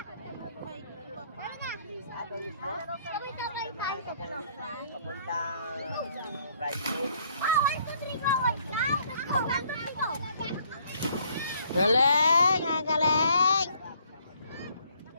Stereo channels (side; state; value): both; inverted; correlation -0.64